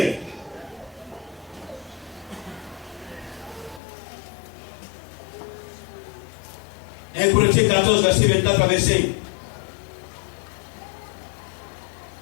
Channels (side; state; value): right; drops out; at 3.8 s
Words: Un Corinthiens 14, verset 24 à 25.